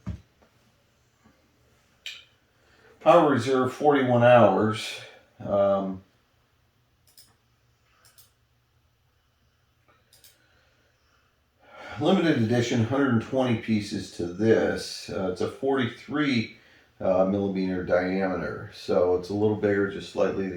Power reserve 41 hours. Limited edition, 120 pieces to this. It's a 43 millimeter diameter, so it's a little bigger, just slightly.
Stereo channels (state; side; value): identical; both; correlation 1.00